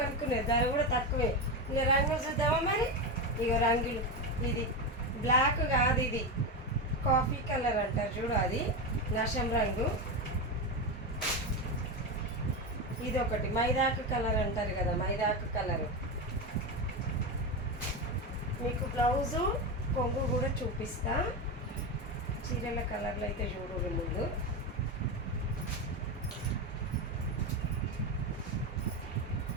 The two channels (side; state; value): both; normal; correlation 0.15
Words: అనుకునేది, ధర కూడా తక్కువే. ఇక రంగులు చూద్దామా మరి. ఇక రంగులు, ఇది బ్లాక్ కాదు, ఇది కాఫీ కలర్ అంటారు చూడు, అది నషం రంగు. ఇది ఒకటి మైదాకు కలర్ అంటారు కదా, మైదాకు కలరు. మీకు బ్లౌజు కొంగు కూడా చూపిస్తా. చీరల కలర్లు అయితే చూడు ముందు.